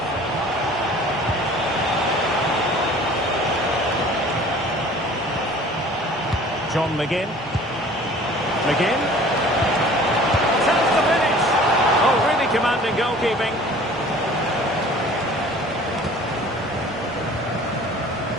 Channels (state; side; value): normal; both; correlation 0.48